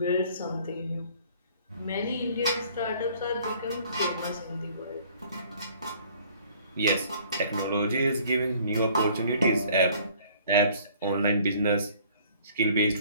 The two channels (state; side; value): inverted; both; correlation -0.55